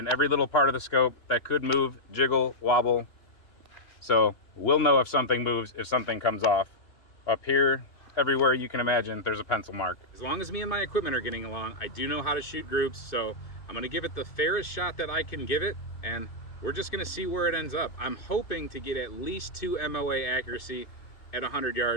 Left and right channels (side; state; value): right; late; 2.6 ms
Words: every little part of the scope that could move, jiggle, wobble. So we'll know if something moves, if something comes off. Up here, everywhere you can imagine there's a pencil mark. As long as me and my equipment are getting along, I do know how to shoot groups, so I'm gonna give it the fairest shot that I can give it, and we're just gonna see where it ends up. I'm hoping to get at least 2 MOA accuracy at 100